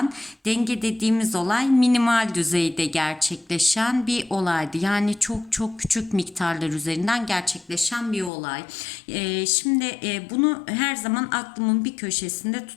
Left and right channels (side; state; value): right; drops out; at 8.3 s